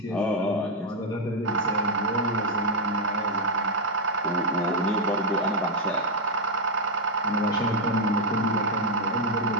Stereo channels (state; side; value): normal; both; correlation 0.00